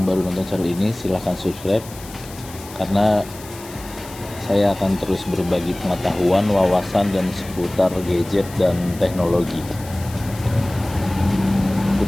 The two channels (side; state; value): left; noise; hiss, 17 dB below the sound